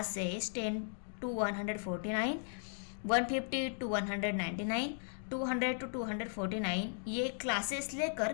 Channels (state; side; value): silent; right; digital silence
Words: 10 to 149, 150 to 199, 200 to 249 ये क्लासेस लेकर